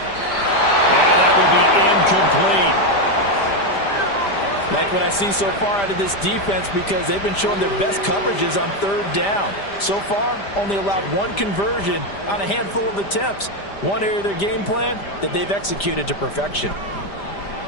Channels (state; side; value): late; right; 5.0 ms